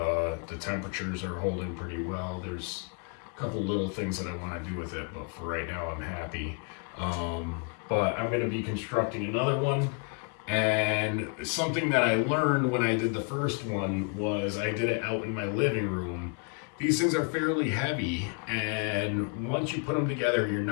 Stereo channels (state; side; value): quieter; right; 37.2 dB